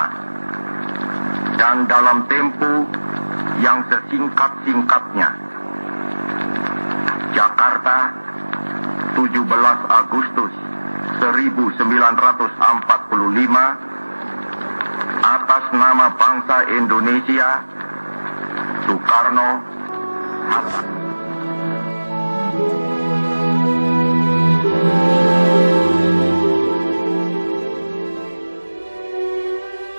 dan dalam tempo yang sesingkat-singkatnya. Jakarta, 17 Agustus 1945, atas nama bangsa Indonesia, Soekarno Hatta.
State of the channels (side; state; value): both; inverted; correlation -1.00